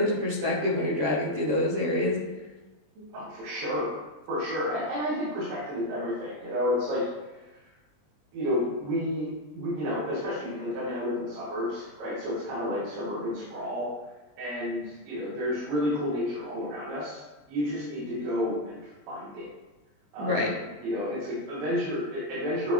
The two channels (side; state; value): left; late; 20 ms